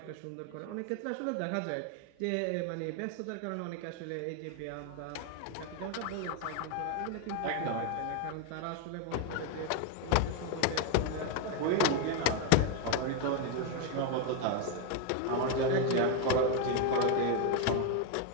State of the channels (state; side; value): different; both; correlation 0.01